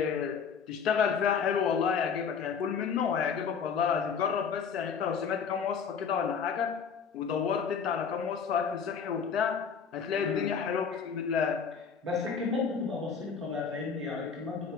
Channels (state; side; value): quieter; right; 6.4 dB